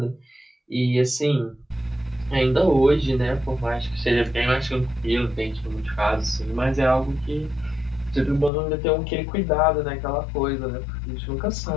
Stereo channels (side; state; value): right; drops out; at 8.5 s